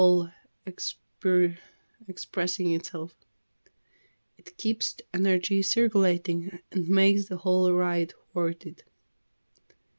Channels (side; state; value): both; inverted; correlation -1.00